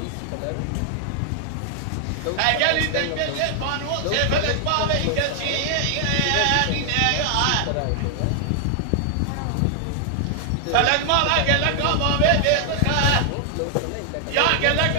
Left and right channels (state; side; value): different; both; correlation 0.00